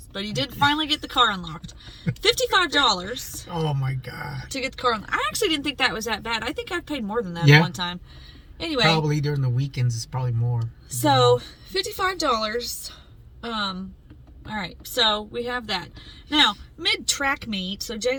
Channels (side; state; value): both; identical; correlation 1.00